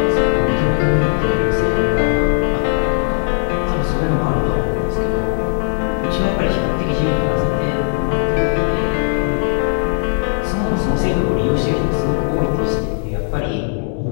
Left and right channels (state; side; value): silent; right; digital silence